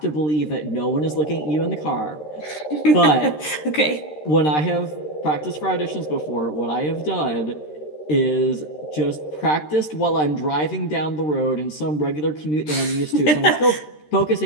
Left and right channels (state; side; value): late; right; 13 ms